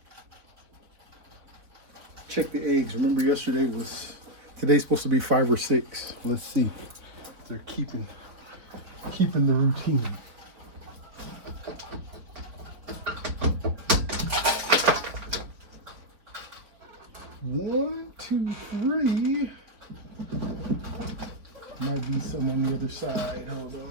Check the eggs. Remember today's supposed to be 5 or 6. Let's see. They're keeping the routine. 1, 2, 3. Might be some on the other side. Hold on.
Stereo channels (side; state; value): left; late; 4.2 ms